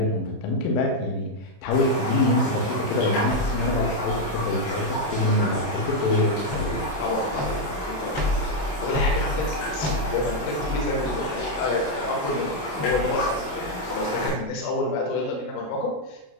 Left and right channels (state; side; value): late; right; 27 ms